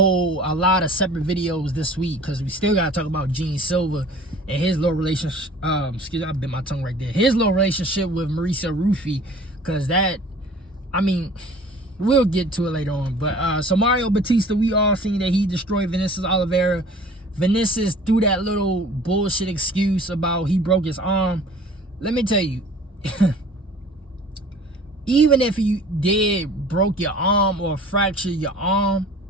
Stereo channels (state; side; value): normal; both; correlation 0.47